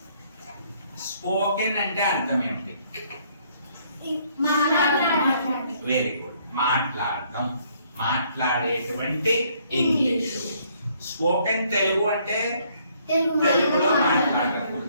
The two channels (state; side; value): inverted; both; correlation -0.66